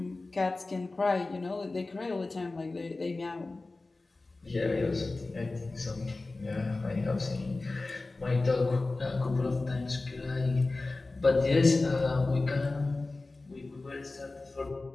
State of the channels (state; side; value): quieter; right; 3.3 dB